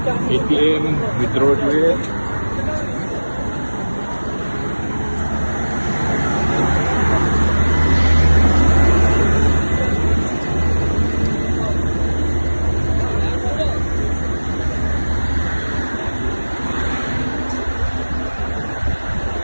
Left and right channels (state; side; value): inverted; both; correlation -1.00